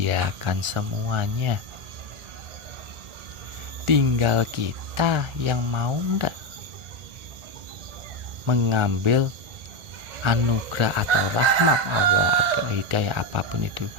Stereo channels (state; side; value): late; left; 1.4 ms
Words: semuanya. Tinggal kita yang mau enggak mengambil anugerah atau rahmat Allah atau hidayah apapun itu